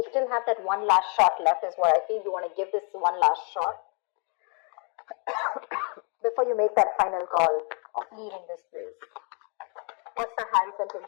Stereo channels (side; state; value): right; quieter; 37.3 dB